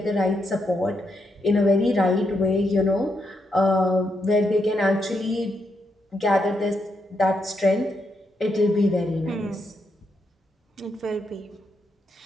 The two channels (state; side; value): normal; both; correlation 0.81